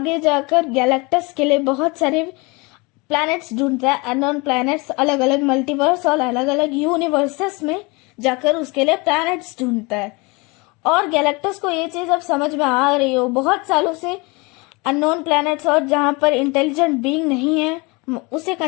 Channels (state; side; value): quieter; right; 27.0 dB